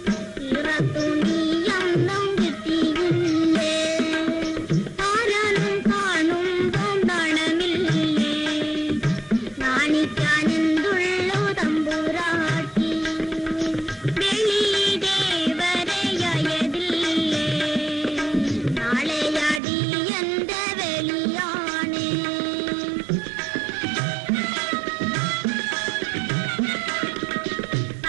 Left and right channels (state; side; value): drops out; left; at 19.6 s